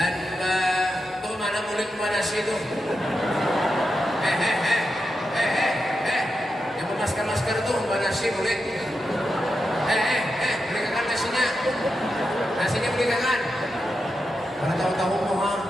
tuh mana murid mana sih itu? Yang masker tuh mana sih murid? Belikan nasinya. Nasinya belikan. Mana tahu-tahu mohon.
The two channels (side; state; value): both; normal; correlation 0.88